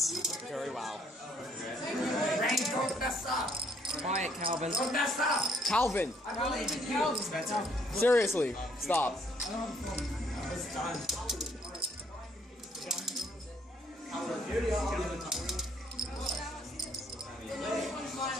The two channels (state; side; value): normal; both; correlation 0.66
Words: Very wow. Quiet, Calvin. Calvin! Seriously, stop.